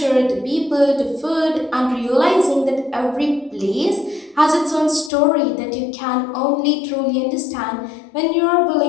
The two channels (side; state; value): right; drops out; at 5.1 s